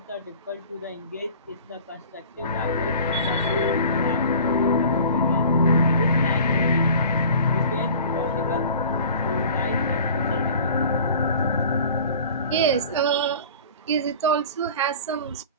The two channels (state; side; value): inverted; both; correlation -0.43